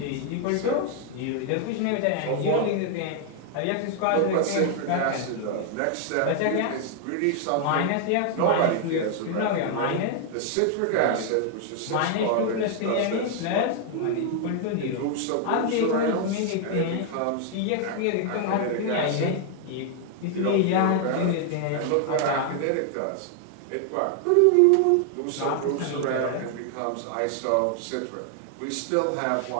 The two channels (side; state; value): both; different; correlation 0.00